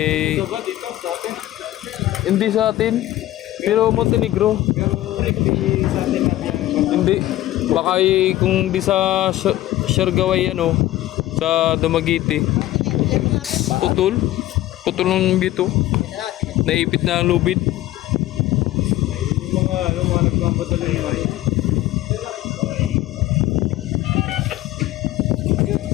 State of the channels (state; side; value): quieter; right; 15.3 dB